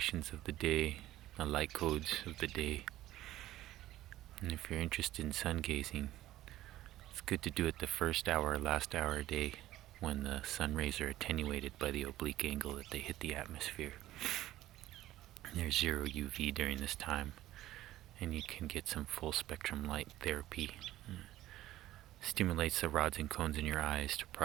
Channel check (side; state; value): left; quieter; 14.8 dB